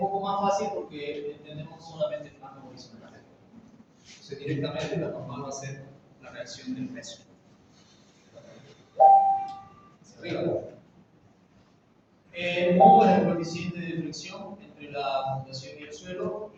más fácil porque entendemos solamente el plano horizontal. Entonces, directamente la normal va a ser la reacción del peso. Hacia arriba. Mu es el coeficiente de fricción entre la fundación y el suelo,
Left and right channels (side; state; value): both; identical; correlation 1.00